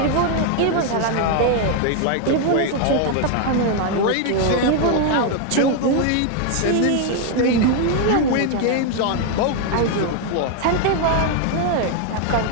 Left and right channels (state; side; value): different; both; correlation 0.01